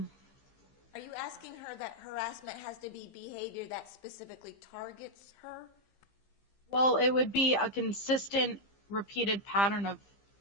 Are you asking her that harassment has to be behavior that specifically targets her? Well, it would be a consistent, repeated pattern of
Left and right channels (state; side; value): late; right; 15 ms